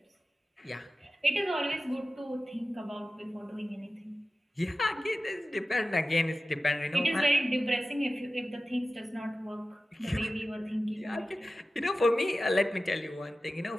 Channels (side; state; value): both; normal; correlation 0.95